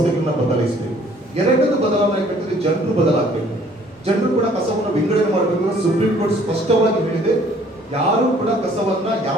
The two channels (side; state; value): both; normal; correlation 0.58